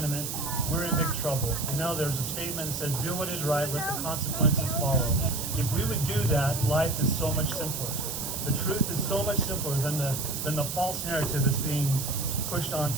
we're in big trouble. You know, there's a statement that says, do what is right, let the consequences follow. If we would do that, life is so much simpler. The truth is so much simpler than the false narrative that's being pushed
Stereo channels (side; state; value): right; noise; hiss, 4 dB below the sound